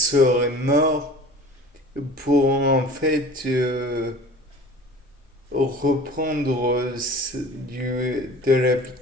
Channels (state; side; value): normal; both; correlation 0.43